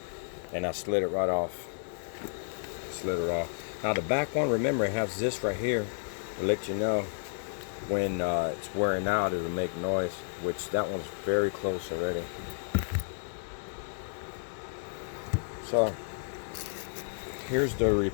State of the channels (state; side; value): silent; right; digital silence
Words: and I slid it right off. Slid it off. Now the back one, remember, it has this right here to let you know when it's wearing out, it'll make noise, which that one's very close already. So here's the